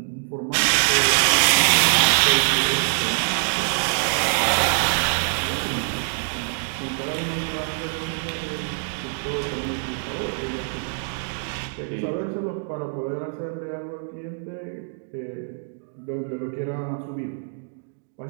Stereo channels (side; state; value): left; silent; 62 dB below the other